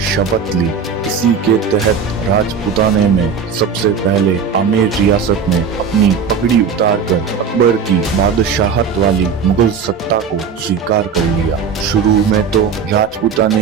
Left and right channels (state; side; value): quieter; left; 6.1 dB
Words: शपथ ली। इसी के तहत राजपूताने में सबसे पहले आमेर रियासत में अपनी पगड़ी उतारकर अकबर की बादशाहत वाली मुगल सत्ता को स्वीकार कर लिया। शुरू में तो